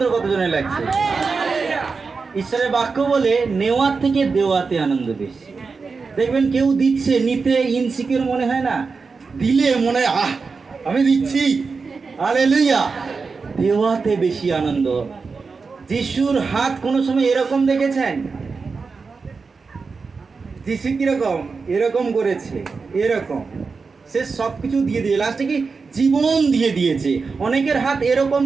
কতজনে লাগছে। ঈশ্বরের বাক্য বলে নেওয়ার থেকে দেওয়াতে আনন্দ বেশি। দেখবেন কেউ দিচ্ছে, নিতে ইনসিকিউর মনে হয় না, দিলে মনে হয় আহ আমি দিচ্ছি, হালেলুয়া। দেওয়াতে বেশি আনন্দ। যিশুর হাত কোনো সময় এরকম দেখেছেন? যিশু কিরকম? এরকম করেছে, এরকম। সে সব কিছু দিয়ে দিয়ে লাস্টে কি জীবন দিয়ে দিয়েছে। অনেকের হাত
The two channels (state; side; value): quieter; left; 4.7 dB